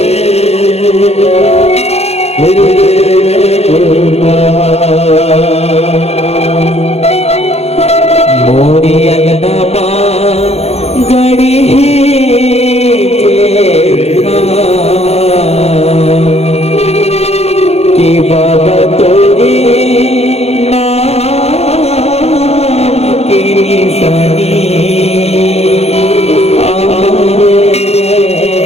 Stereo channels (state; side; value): late; right; 0.30 ms